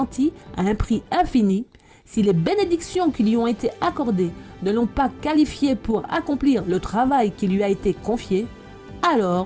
à un prix infini, si les bénédictions qui lui ont été accordées ne l'ont pas qualifiée pour accomplir le travail qui lui a été confié,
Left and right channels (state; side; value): identical; both; correlation 1.00